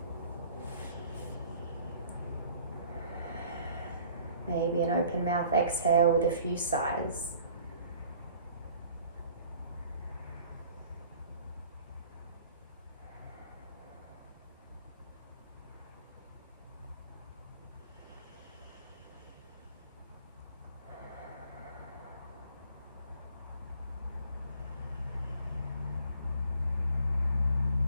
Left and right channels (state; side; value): inverted; both; correlation -0.54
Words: Maybe an open mouth exhale with a few sighs.